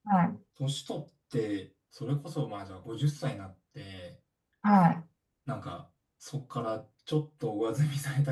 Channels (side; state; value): both; identical; correlation 1.00